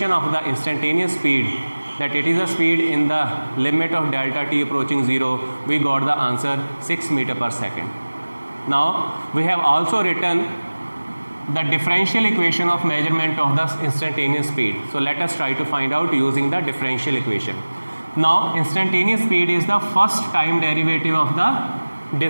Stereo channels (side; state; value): both; inverted; correlation -1.00